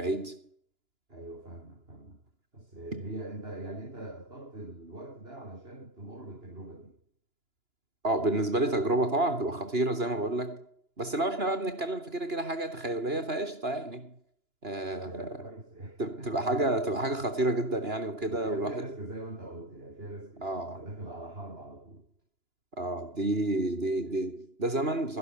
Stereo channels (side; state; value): left; late; 2.9 ms